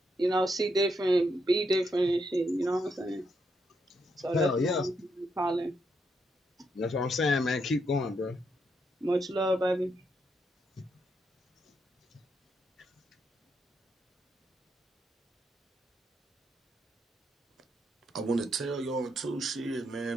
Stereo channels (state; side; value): normal; both; correlation 0.79